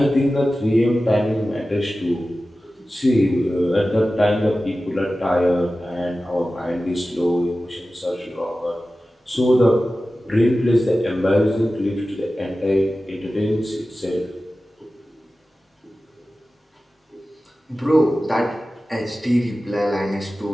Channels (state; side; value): normal; both; correlation 0.95